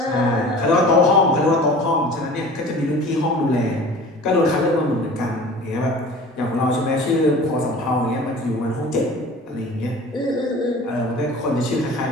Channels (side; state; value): both; normal; correlation 0.42